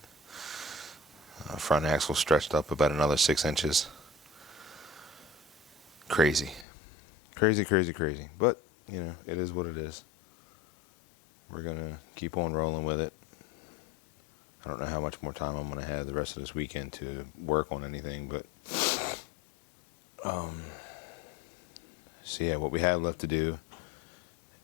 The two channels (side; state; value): right; drops out; at 6.7 s